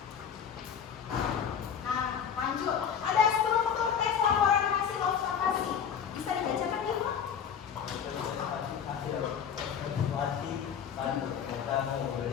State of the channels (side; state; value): right; quieter; 7.8 dB